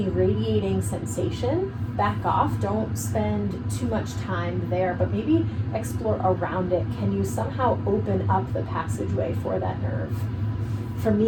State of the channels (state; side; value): identical; both; correlation 1.00